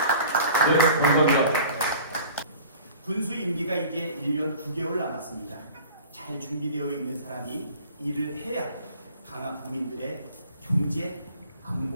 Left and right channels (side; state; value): both; inverted; correlation -0.45